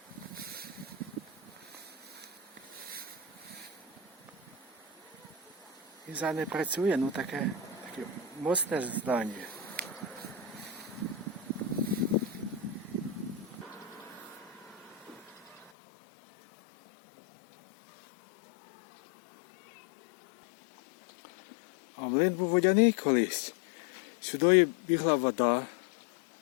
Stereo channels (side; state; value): right; drops out; at 15.7 s